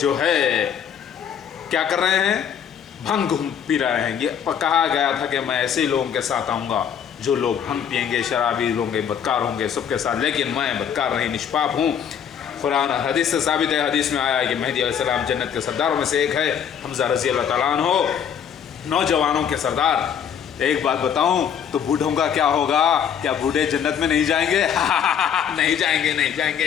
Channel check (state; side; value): quieter; right; 8.3 dB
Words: है क्या कर रहे हैं? भंग पी रहे हैं। ये कहा गया था कि मैं ऐसे ही लोगों के साथ आऊँगा जो लोग भंग पिएंगे, शराबी होंगे, बदकार होंगे, सबके साथ, लेकिन मैं बदकार नहीं, निष्पाप हूँ। कुरान हदीस से साबित है, हदीस में आया है कि मेहदी अलैहिस्सलाम जन्नत के सरदारों में से एक है, हमजा रज़ी अल्लाह तआला अन्हु, नौजवानों के सरदार। एक बात बताऊं तो बूढ़ों का क्या होगा? क्या बूढ़े जन्नत में नहीं जाएंगे? नहीं जाएंगे, नहीं